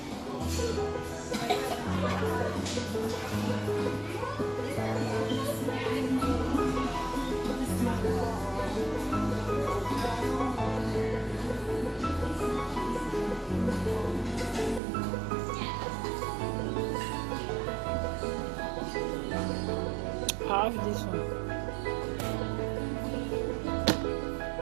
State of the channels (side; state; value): left; drops out; at 14.8 s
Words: I have this one.